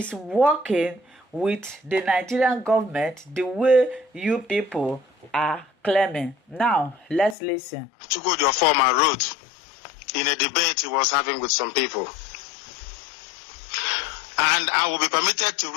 working with the Nigerian government the way you people are claiming. Now, let's listen. Chukwudi, your former wrote in a debate he was having with some people. And I will be permitted to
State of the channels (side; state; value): right; drops out; at 7.4 s